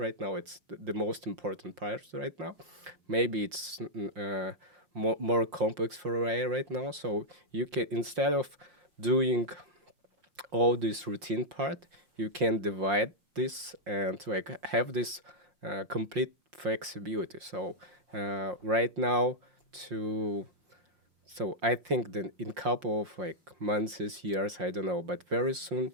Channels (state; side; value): late; left; 5.6 ms